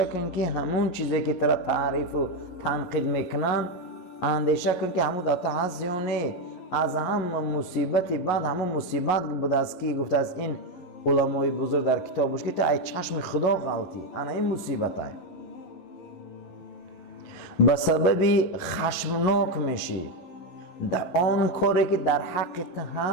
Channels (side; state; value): right; late; 11 ms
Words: کن که همون چیزی که ترا تعریف و تنقید میکنن اندیشه کن که همون داتا هست یا نه. از همه مصیبتی بعد همون مصیبت بود است که گفته از این علمای بزرگ در کتابش که تو ای چشم خدا غلطی، انا این مصیبت های. به سبب خشمناک میشی در آن کاری که در حقیقت